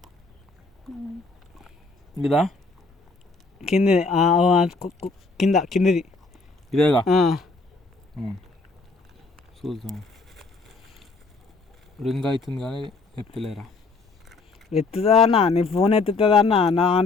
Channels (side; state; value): right; quieter; 3.7 dB